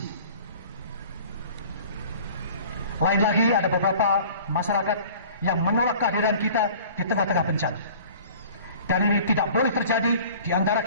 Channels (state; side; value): inverted; both; correlation -0.46